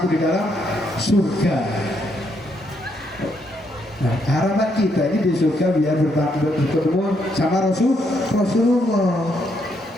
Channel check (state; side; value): normal; both; correlation 0.75